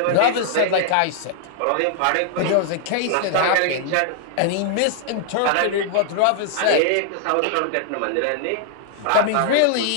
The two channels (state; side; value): different; both; correlation 0.00